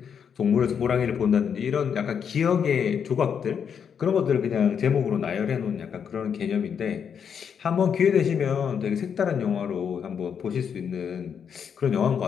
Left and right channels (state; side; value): quieter; right; 7.4 dB